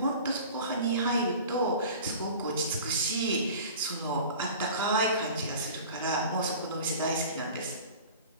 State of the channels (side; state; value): both; inverted; correlation -0.40